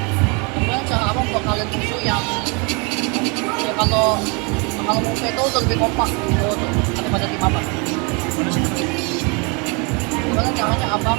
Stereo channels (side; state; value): left; quieter; 31.8 dB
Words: gimana cara abang buat kalian musuh yang ya kalau musuh itu udah lebih kompak gitu daripada tim abang? Gimana caranya